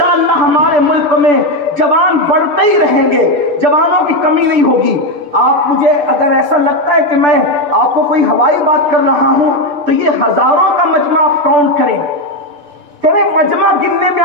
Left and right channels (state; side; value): late; left; 6.8 ms